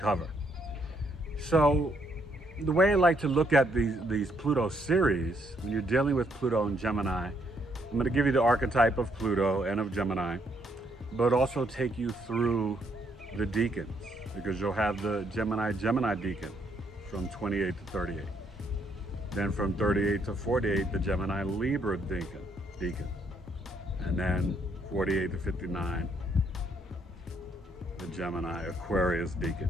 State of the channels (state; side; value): normal; both; correlation 0.72